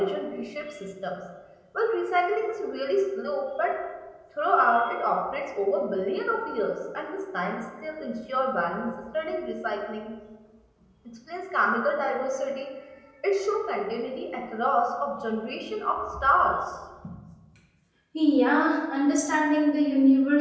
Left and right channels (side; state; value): both; identical; correlation 1.00